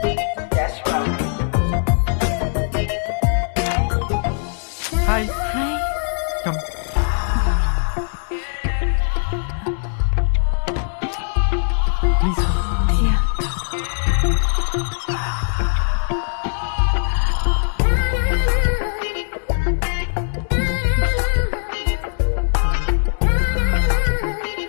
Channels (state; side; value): silent; right; digital silence